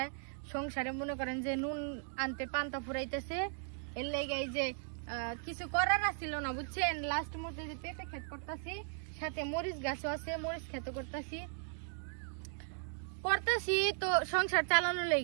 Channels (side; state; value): left; silent; 53 dB below the other